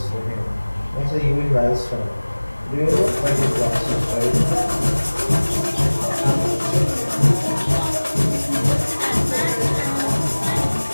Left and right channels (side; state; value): both; inverted; correlation -1.00